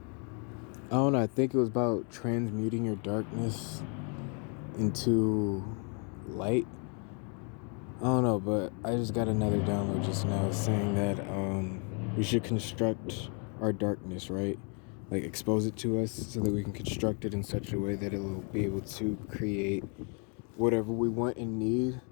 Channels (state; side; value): quieter; right; 37.9 dB